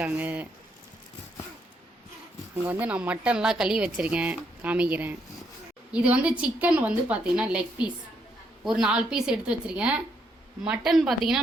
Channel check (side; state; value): both; normal; correlation 0.75